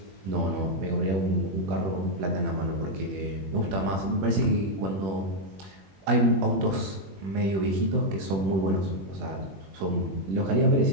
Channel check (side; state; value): left; late; 21 ms